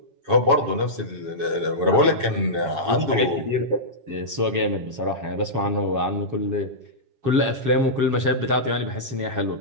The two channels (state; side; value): late; left; 7.3 ms